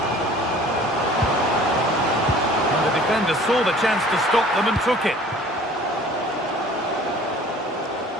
And the defender saw the chance to stop them and took it.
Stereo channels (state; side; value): normal; both; correlation 0.49